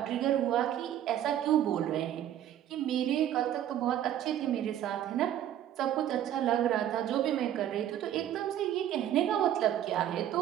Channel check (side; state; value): left; quieter; 11.3 dB